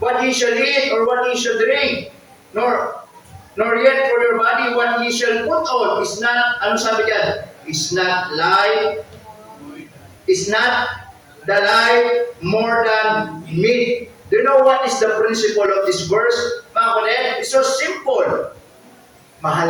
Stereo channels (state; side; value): identical; both; correlation 1.00